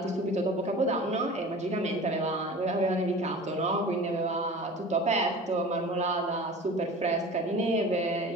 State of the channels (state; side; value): normal; both; correlation 0.38